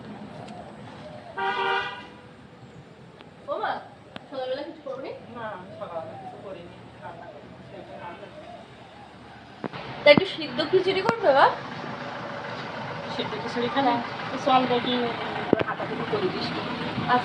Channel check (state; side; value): identical; both; correlation 1.00